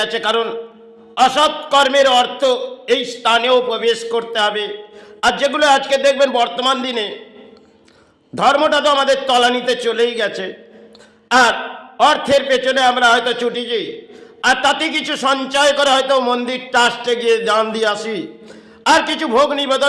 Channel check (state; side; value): identical; both; correlation 1.00